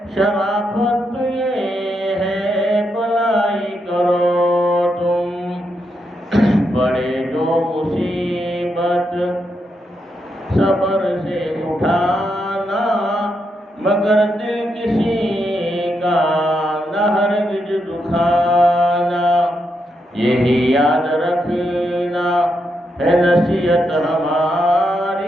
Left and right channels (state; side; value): normal; both; correlation 0.82